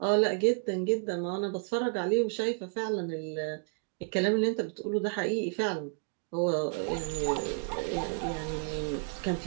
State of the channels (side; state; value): left; quieter; 39.5 dB